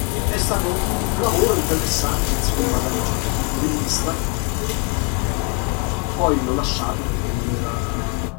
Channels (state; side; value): quieter; right; 32.4 dB